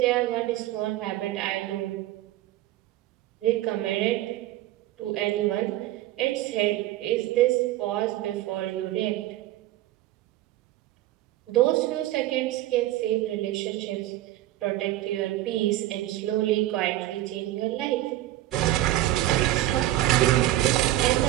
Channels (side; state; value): left; quieter; 15.2 dB